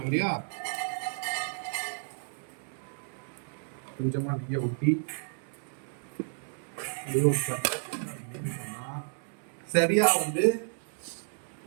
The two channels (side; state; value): left; silent; 57 dB below the other